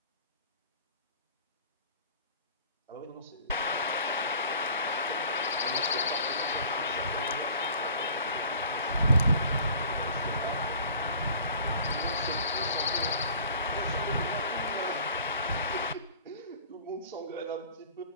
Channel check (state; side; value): inverted; both; correlation -0.48